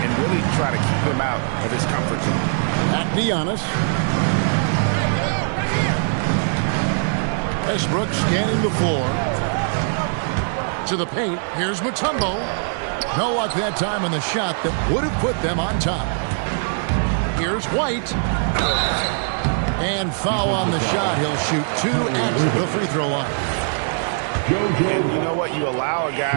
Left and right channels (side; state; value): left; silent; digital silence